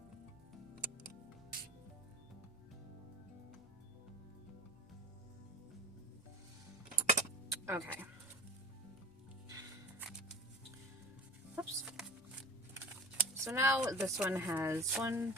Okay. Oops. So now this one has 1,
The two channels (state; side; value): noise; right; rumble, 27 dB below the sound